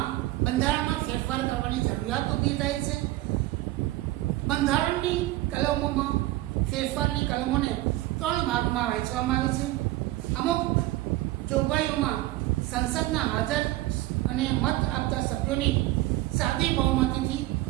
બંધારણમાં ફેરફાર કરવાની જરૂરિયાત ઊભી થાય છે. બંધારણની કલમોમાં ફેરફારની કલમોને 3 ભાગમાં વહેંચવામાં આવે છે. અમુક જોગવાઈઓમાં સંસદના હાજર અને મત આપતા સભ્યોની સાદી બહુમતીથી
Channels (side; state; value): left; quieter; 17.0 dB